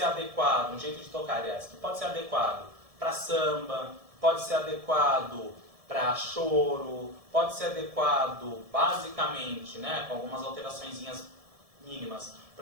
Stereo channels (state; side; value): late; left; 1.7 ms